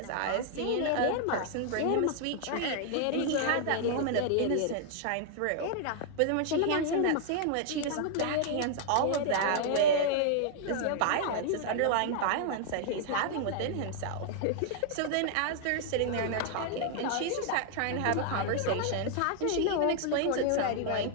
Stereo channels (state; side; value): different; both; correlation 0.00